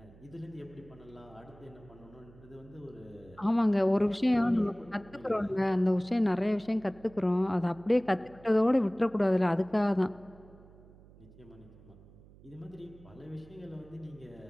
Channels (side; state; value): right; noise; hum, 23 dB below the sound